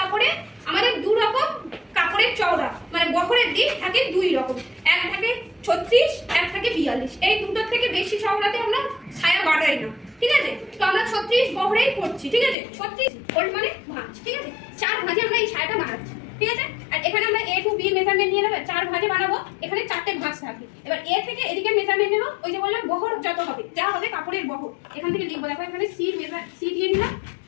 আমাদের দু রকম কাপড়ের চওড়া মানে বহরের দিক থাকে দুই রকম এক থাকে 36 এক থাকে 42 এই দুটোর থেকে বেশি চওড়াতে আমরা সায়া বাড়াই না ঠিক আছে তো আমরা 36 বহরেই করছি ঠিক আছে 36 ফোল্ড মানে ভাঁজ ঠিক আছে চার ভাঁজে আমরা এই সায়াটা বানাচ্ছি ঠিক আছে আর এখানে আমরা a to b মেজারমেন্ট নিয়ে নেব চার ভাঁজে বানাবো এখানে চারটে ভাঁজ থাকে এবার a থেকে এদিকে মেজারমেন্ট নেব ওই যে বললাম বহর যত হবে যা হবে কাপড়ের বহর এখান থেকে লিখবো দেখো এখানে c দিয়ে নিলাম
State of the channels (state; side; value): drops out; right; at 12.6 s